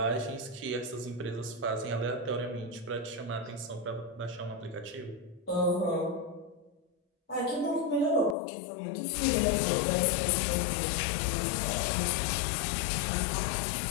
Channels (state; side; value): drops out; right; at 8.3 s